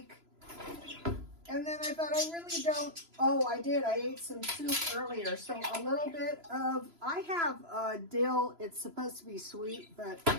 And then I thought I really don't, oh, I did. I ate some soup earlier. So a little bit of, I have dill. It's supposed to be sweet, but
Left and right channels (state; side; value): late; left; 3.0 ms